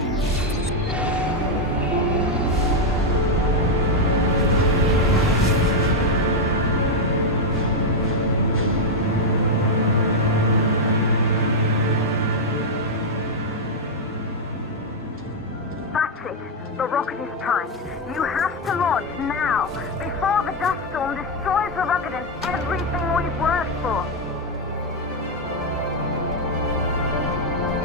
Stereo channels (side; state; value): both; normal; correlation 0.01